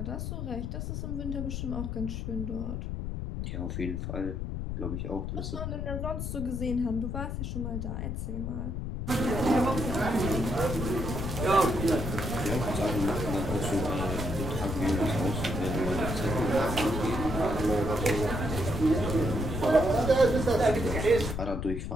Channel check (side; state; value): left; noise; rumble, 4 dB below the sound